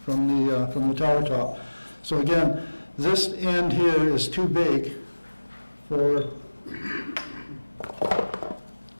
from the tower top. So again, this end here is too big for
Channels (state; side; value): inverted; both; correlation -1.00